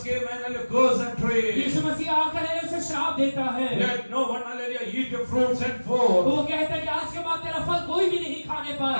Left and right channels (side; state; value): both; inverted; correlation -1.00